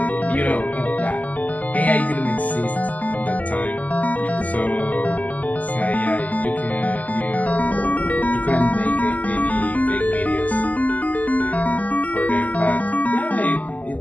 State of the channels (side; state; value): right; late; 0.077 ms